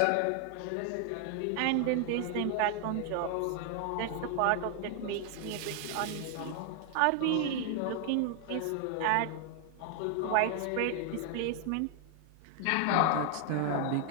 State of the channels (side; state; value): both; different; correlation 0.00